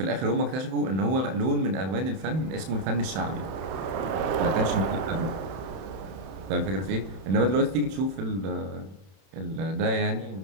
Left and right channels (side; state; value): left; late; 31 ms